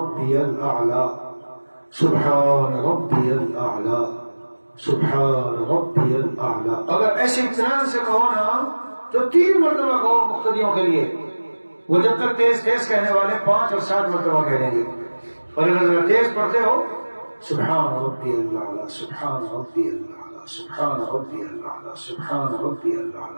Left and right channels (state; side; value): inverted; both; correlation -1.00